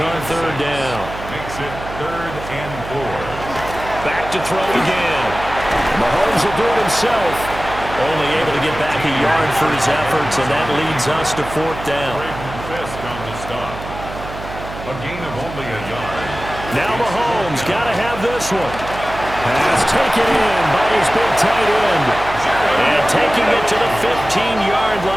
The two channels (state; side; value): noise; right; hum, 11 dB below the sound